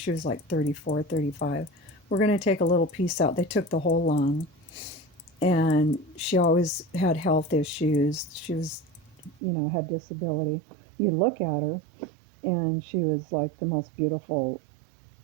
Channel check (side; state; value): left; drops out; at 9.4 s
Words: was like 34, 35. we're going to take a little piece out. They took the whole lung, and she always had health issues. She was, had disability. You look at her, and she was like the most beautiful